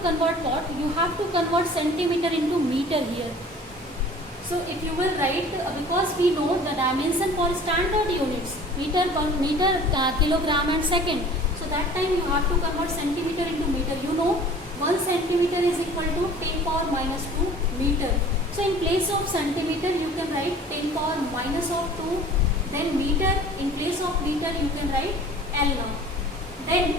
convert what? You have to convert centimeter into meter here. So if you will write, because we know the dimension for standard units, meter, kilogram and second. So that time you have to convert centimeter into meter. You know 1 centimeter is equal to 10 power minus 2 meter. So in place of centimeter you can write 10 power minus of 2. Then meter, in place of meter you can write L now. Then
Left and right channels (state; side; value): normal; both; correlation 0.46